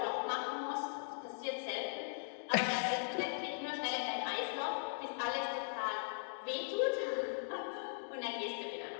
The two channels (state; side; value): silent; right; digital silence